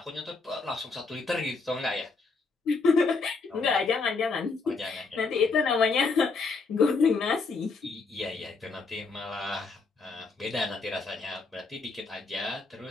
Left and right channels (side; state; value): right; quieter; 4.2 dB